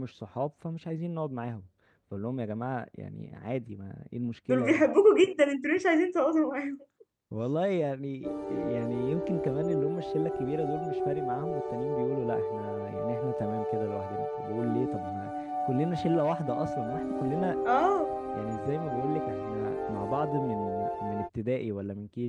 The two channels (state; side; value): identical; both; correlation 1.00